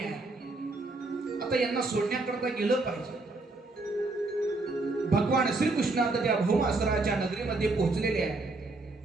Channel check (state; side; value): quieter; left; 3.2 dB